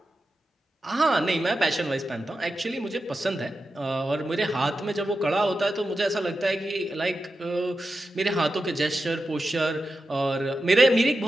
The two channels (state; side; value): normal; both; correlation 0.90